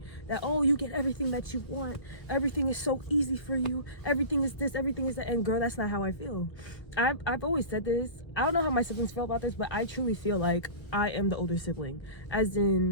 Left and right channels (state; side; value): late; right; 1.3 ms